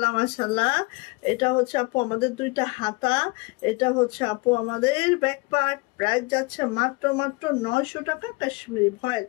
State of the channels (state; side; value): quieter; right; 26.2 dB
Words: মাশাল্লাহ, এটা হচ্ছে আপু আমাদের দুইটা হাতা, এটা হচ্ছে আপু আমাদের ব্যাক পার্ট। প্রাইস যাচ্ছে মাত্র মাত্র 900 টাকা। কাশ্মীরি ভয়েল।